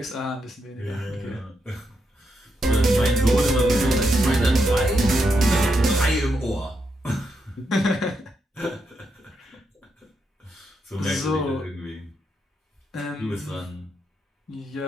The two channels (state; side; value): normal; both; correlation 0.82